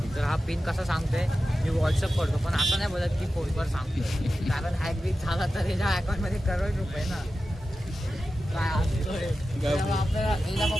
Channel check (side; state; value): both; normal; correlation 0.93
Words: तर हा पिन कसा सांगतोय मी व्हॉट्सअप करतो पण असं नाही बोलत की फोनवर सांगतोय कारण हॅक बीक झाला तर याच्या अकाउंटमध्ये करोड रुपये ना काय असतोय तेव्हा आपल्याला याच्या